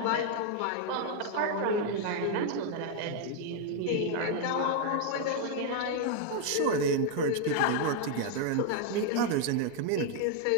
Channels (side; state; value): both; different; correlation 0.00